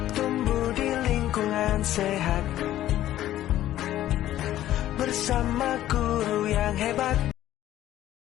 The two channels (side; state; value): right; quieter; 13.3 dB